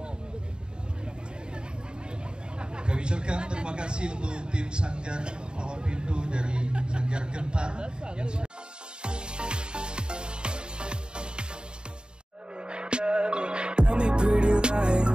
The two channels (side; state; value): left; late; 0.049 ms